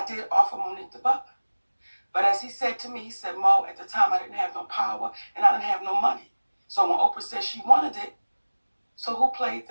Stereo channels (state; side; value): inverted; both; correlation -1.00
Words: did offer Monique The Butler. But as he said to me, he said, Mo, at the time I didn't have no power and I didn't have no money. So when Oprah said she wanted it, so who played